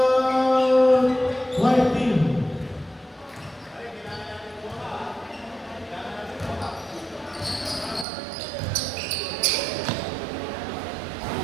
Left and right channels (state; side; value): drops out; left; at 8.1 s